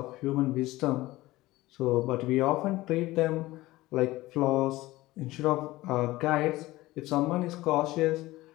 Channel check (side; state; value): right; quieter; 18.4 dB